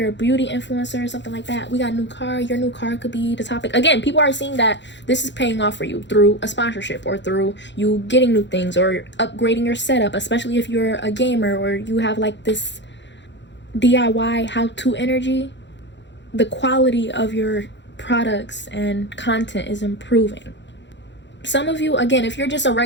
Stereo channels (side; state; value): right; late; 0.52 ms